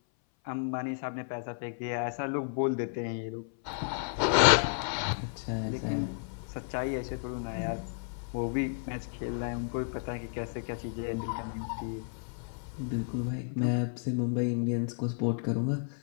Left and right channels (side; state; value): right; silent; 56 dB below the other